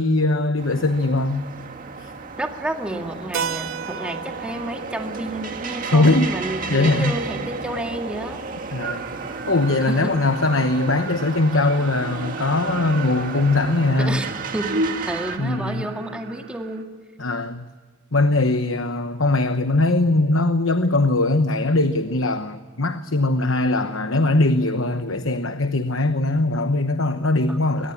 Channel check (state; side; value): normal; both; correlation 0.46